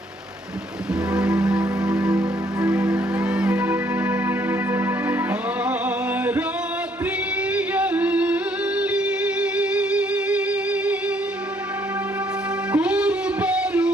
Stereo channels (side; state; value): both; normal; correlation 0.68